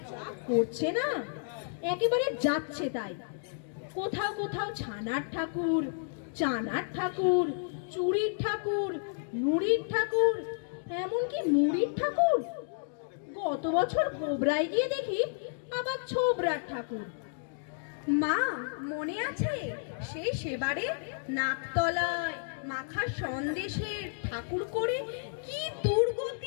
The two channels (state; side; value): silent; right; digital silence